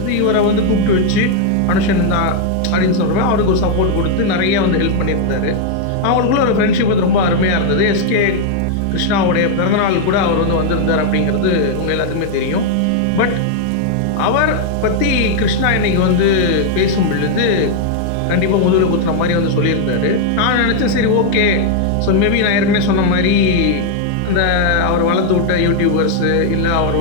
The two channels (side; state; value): both; different; correlation 0.00